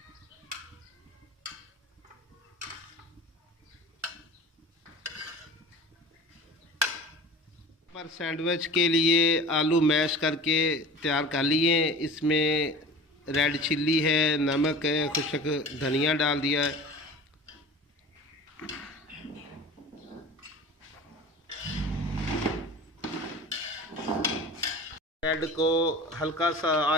पर सैंडविच के लिए आलू मैश करके तैयार कर लिए। इसमें रेड चिल्ली है, नमक है, खुशक धनिया डाल दिया है। ब्रेड को हल्का सा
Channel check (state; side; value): normal; both; correlation 0.39